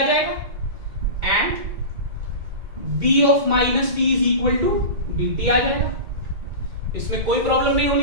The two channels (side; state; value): left; late; 2.2 ms